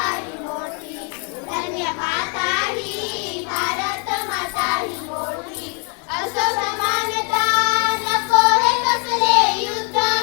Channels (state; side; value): quieter; right; 37.4 dB